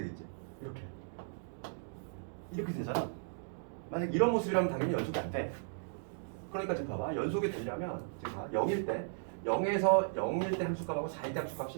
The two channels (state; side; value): silent; left; digital silence